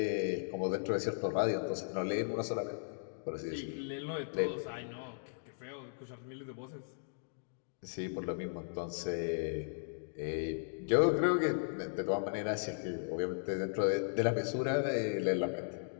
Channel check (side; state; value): right; silent; digital silence